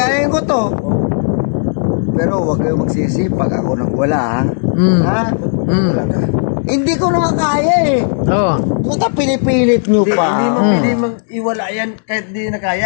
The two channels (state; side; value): silent; right; 70 dB below the other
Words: ko to. Pero huwag kayo magsisi pag ako nagwala, ha? Mm. Ha? Mm. Hindi ko naman kaya eh. Oo. Puta, pinipilit nyo Hindi, pa. hindi mo pwede mang iwala yan kahit di na